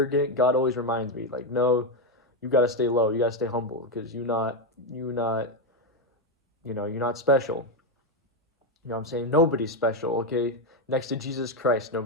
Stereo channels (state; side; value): normal; both; correlation 0.07